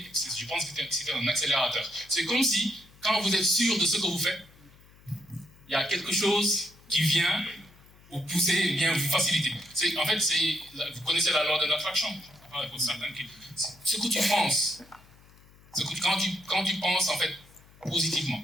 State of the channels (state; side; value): noise; left; hum, 26 dB below the sound